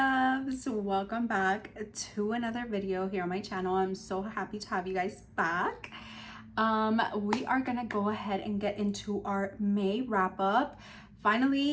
welcome back to another video here on my channel. I'm so happy to have you guys back. We are gonna go ahead and get into our May wrap up.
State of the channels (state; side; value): identical; both; correlation 1.00